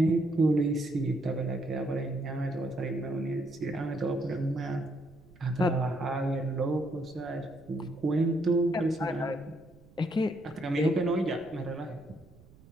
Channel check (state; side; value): noise; right; rumble, 25 dB below the sound